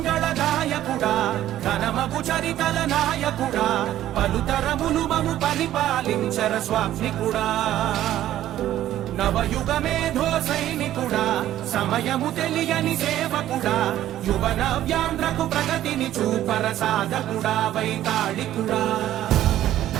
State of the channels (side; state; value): left; quieter; 12.9 dB